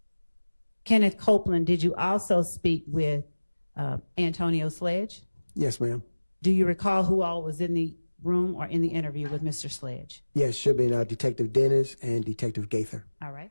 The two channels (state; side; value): inverted; both; correlation -1.00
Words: Kenneth Copeland, did you also speak with Antonio Sledge? Yes, ma'am. Do you recall who all was in the room or in the interview with Mr. Sledge? Yes, should be Detective Dennis and Detective Gaither. All right.